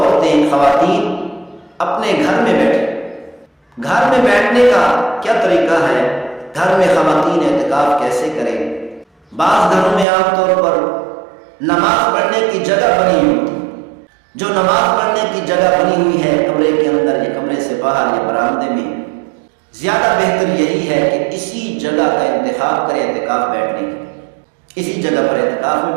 خواتین اپنے گھر میں بیٹھے۔ گھر میں بیٹھنے کا کیا طریقہ ہے؟ گھر میں خواتین اعتکاف کیسے کریں؟ بعض گھروں میں عام طور پر نماز پڑھنے کی جگہ بنی ہوئی ہوتی ہے۔ جو نماز پڑھنے کی جگہ بنی ہوئی ہے کمرے کے اندر یا کمرے سے باہر یا برآمدے میں، زیادہ بہتر یہی ہے کہ اسی جگہ کا انتخاب کریں اعتکاف بیٹھنے کی۔ اسی جگہ پر اعتکاف میں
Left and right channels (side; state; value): left; drops out; at 10.1 s